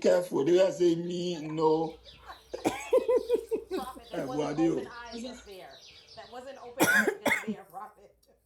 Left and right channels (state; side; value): identical; both; correlation 1.00